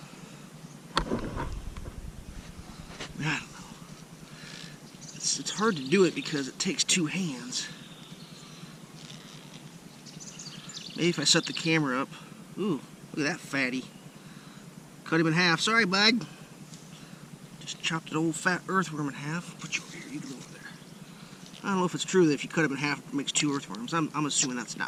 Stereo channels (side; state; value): both; identical; correlation 1.00